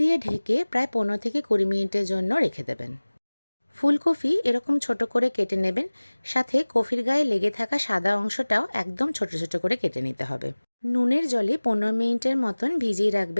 ঢেকে প্রায় 15 থেকে 20 মিনিটের জন্য রেখে দেবেন। ফুলকপি এরকম ছোট করে কেটে নেবেন, সাথে কফির গায়ে লেগে থাকা সাদা অংশটাও একদম ছোট ছোট করে কেটে নিতে হবে। নুনের জলে 15 মিনিটের মতন ভিজিয়ে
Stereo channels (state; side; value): inverted; both; correlation -1.00